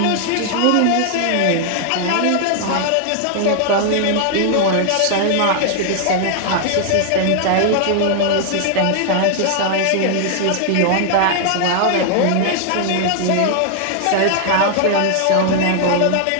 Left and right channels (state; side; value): different; both; correlation 0.00